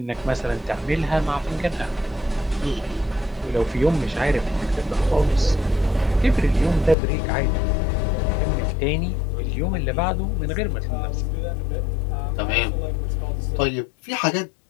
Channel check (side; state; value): right; drops out; at 7.0 s